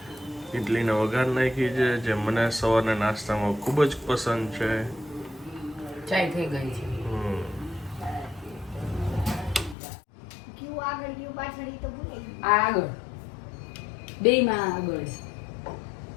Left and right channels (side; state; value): right; drops out; at 9.8 s